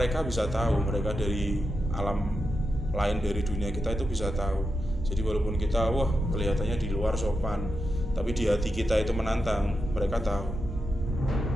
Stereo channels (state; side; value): normal; both; correlation 0.87